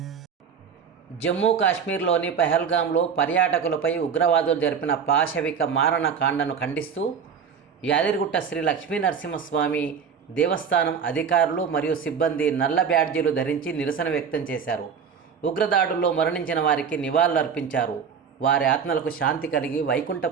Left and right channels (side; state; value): left; quieter; 6.7 dB